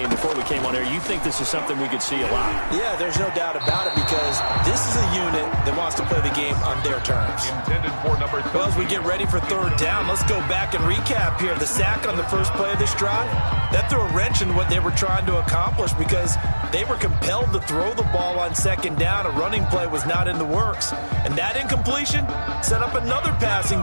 before we came on air, you think this is something we could see a lot. Yeah, there's no doubt about it because this is a unit that wants to play the game on their terms. Intended for number 3. Well, as we get ready for third down, let's go back and recap here. The sack on the first play of this drive, that threw a wrench in what they were trying to accomplish because they were compelled to throw the ball on second down. A running play was not in the works. And that incompletion set up another passing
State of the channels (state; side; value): inverted; both; correlation -1.00